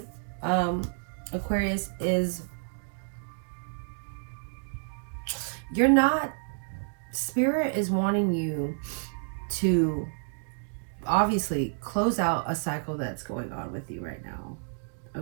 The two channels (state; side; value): silent; left; digital silence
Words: Aquarius, is you're not, Spirit is wanting you to obviously close out a cycle that's going on with you right now.